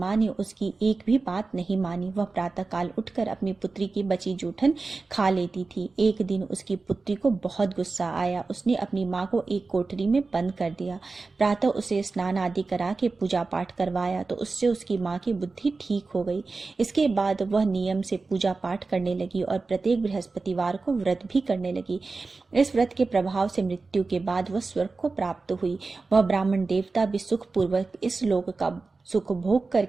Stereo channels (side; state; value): left; quieter; 3.9 dB